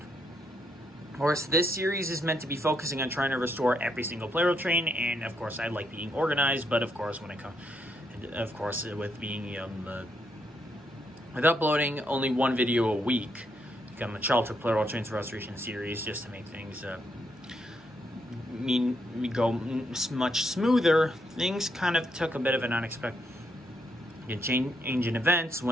Of course, this series is meant to be focusing on trying to restore every single Plarail train, and of course, I like being organized, but of course, with uploading only one video a week, become a Childhood Plarail Trains Restoration series, just to make things go much smoother. Things kind of took a bit of an unexpected change in events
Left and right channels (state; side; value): normal; both; correlation 0.77